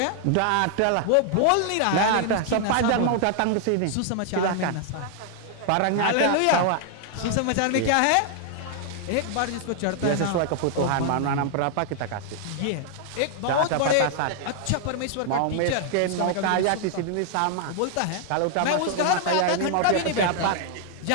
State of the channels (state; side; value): different; both; correlation 0.00